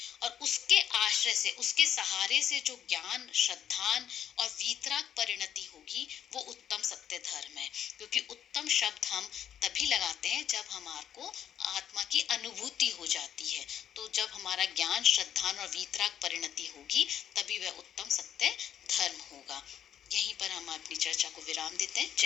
और उसके आश्रय से, उसके सहारे से जो ज्ञान, श्रद्धान और वीतराग परिणति होगी, वो उत्तम सत्य धर्म है। क्योंकि उत्तम शब्द हम तभी लगाते हैं जब हमारे को आत्मा की अनुभूति हो जाती है। तो जब हमारा ज्ञान, श्रद्धान और वीतराग परिणति होगी, तभी वह उत्तम सत्य धर्म होगा। यहीं पर हम अपनी चर्चा को विराम देते हैं।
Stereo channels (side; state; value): right; quieter; 9.6 dB